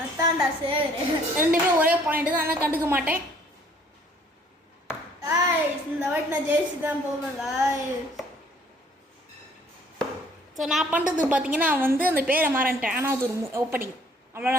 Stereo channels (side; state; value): both; normal; correlation 0.59